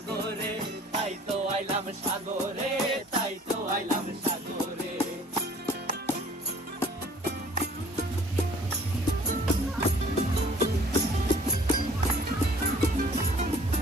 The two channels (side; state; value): both; normal; correlation 0.53